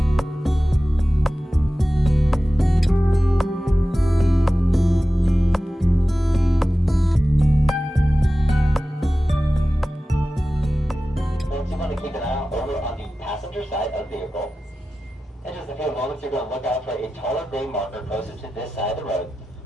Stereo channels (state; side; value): normal; both; correlation 0.95